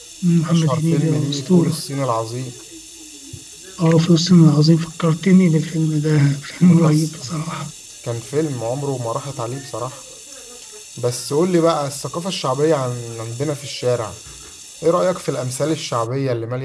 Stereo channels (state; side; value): identical; both; correlation 1.00